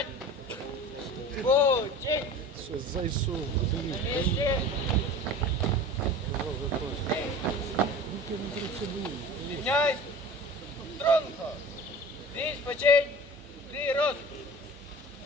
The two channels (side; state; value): both; normal; correlation 0.38